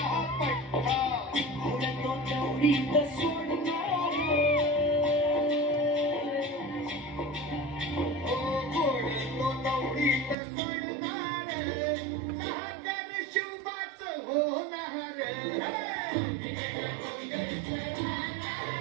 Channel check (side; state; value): left; drops out; at 10.4 s